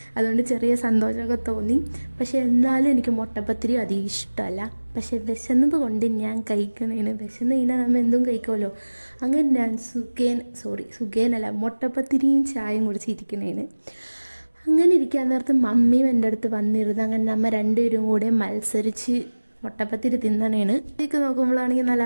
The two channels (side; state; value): both; inverted; correlation -1.00